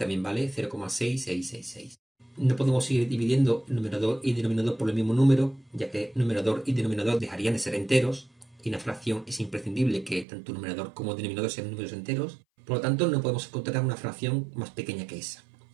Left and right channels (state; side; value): drops out; left; at 10.2 s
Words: vale 0,6666. No podemos seguir dividiendo numerador y denominador por el mismo número, ya que numerador y denominador dejarían de ser enteros, y una fracción es imprescindible que tanto numerador como denominador sean números enteros. Por lo tanto, no podemos encontrar una fracción más pequeña que esa.